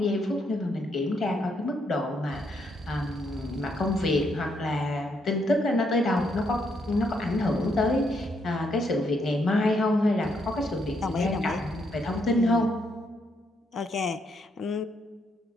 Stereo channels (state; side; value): normal; both; correlation 0.75